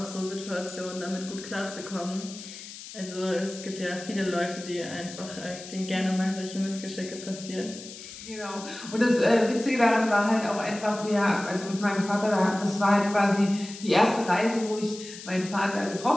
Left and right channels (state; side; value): noise; left; hiss, 13 dB below the sound